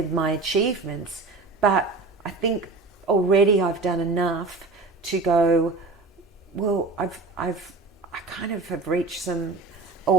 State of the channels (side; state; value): left; quieter; 3.6 dB